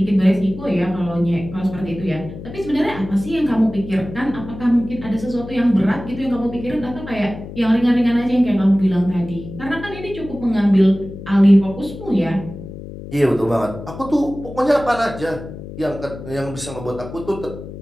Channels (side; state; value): left; noise; hum, 12 dB below the sound